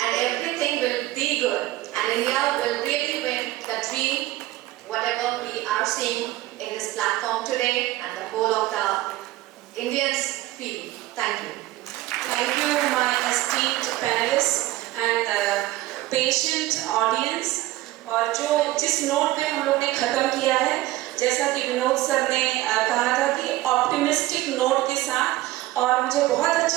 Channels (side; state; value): left; quieter; 16.6 dB